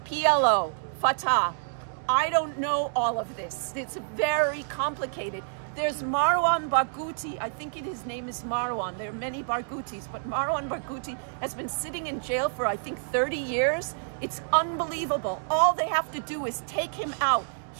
PLO, Fatah. I don't know all of this. It's very complicated. There's Marwan Barghouti. I think his name is Marwan. There are many Barghoutis, but Marwan Barghouti has been sitting in jail for, I think, 30 years. It's unbelievable. All they have to do is take him out.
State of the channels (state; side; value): silent; left; digital silence